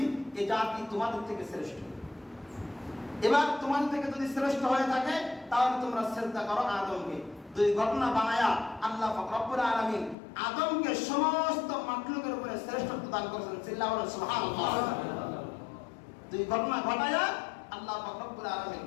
এই জাতি তোমাদের থেকে শ্রেষ্ঠ। এবার তোমাদের থেকে যদি শ্রেষ্ঠ হয়ে থাকে তাহলে তোমরা সিজদা করো আদমকে। দুই ঘটনা বানায়া আল্লাহ পাক রব্বুল আলামিন আদমকে সমস্ত মাখলুকের উপরে শ্রেষ্ঠত্ব দান করেছেন। চিল্লায়া বলেন সুবহানাল্লাহ। দুই ঘটনা ঘটায়া আল্লাহ পাক রব্বুল আলামিন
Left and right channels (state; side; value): drops out; right; at 10.2 s